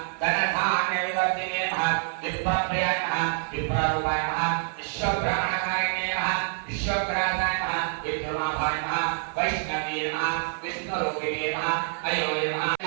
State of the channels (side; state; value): left; silent; 60 dB below the other